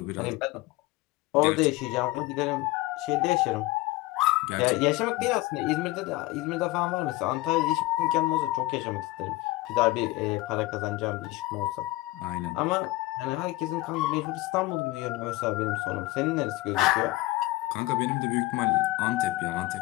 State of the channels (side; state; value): right; quieter; 19.4 dB